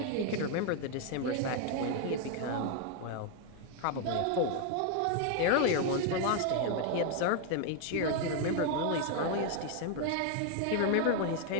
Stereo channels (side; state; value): both; different; correlation 0.01